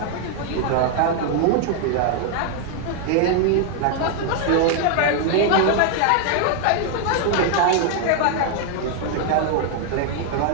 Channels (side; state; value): both; different; correlation 0.00